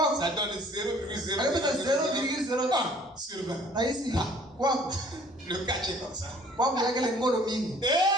donne 0,001 sur 20. Le catch est comme ça. Amen.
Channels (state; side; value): normal; both; correlation 0.55